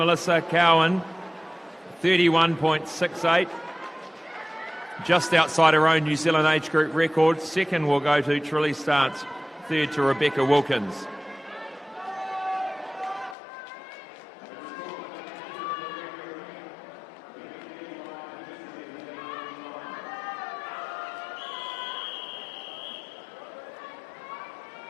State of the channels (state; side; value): drops out; right; at 13.4 s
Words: Cowan, 31.68. Just outside her own New Zealand age group record. Second will go to Trelise Dance. Third to Rebecca Wilkins.